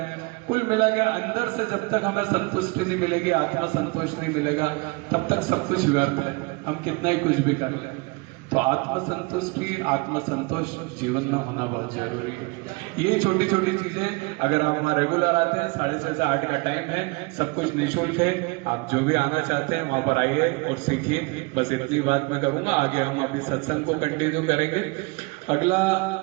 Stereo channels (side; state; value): left; quieter; 27.6 dB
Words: कुल मिला के अंदर से जब तक हमें संतुष्टि नहीं मिलेगी, आत्मा संतोष नहीं मिलेगा, तब तक सब कुछ व्यर्थ है, हम कितना ही कुछ भी कर लें। तो आत्म संतुष्टि, आत्म संतोष जीवन में होना बहुत जरूरी है। ये छोटी छोटी चीजें अगर आप वहाँ रेगुलर आते हैं, 6:30 से 8 का टाइम है, सब कुछ निःशुल्क है, आप जो भी आना चाहते हैं वहां पर आइए और सीखिए। बस इतनी बात मैं करूंगा। आगे हम अभी सत्संग को कंटिन्यू करेंगे। अगला